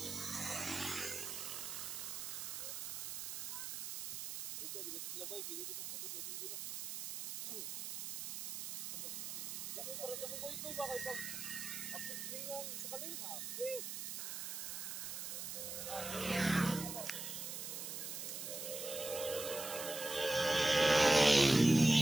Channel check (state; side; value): noise; right; hiss, 5 dB below the sound